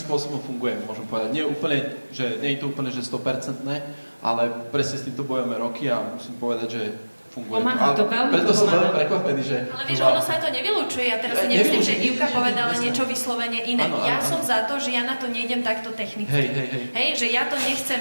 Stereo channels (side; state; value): both; inverted; correlation -1.00